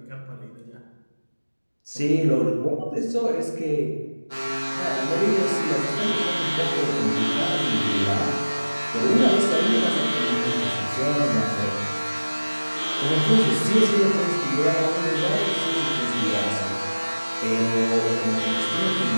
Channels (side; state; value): both; inverted; correlation -1.00